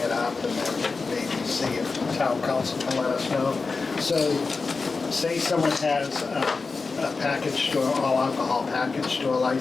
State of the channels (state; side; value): quieter; right; 4.3 dB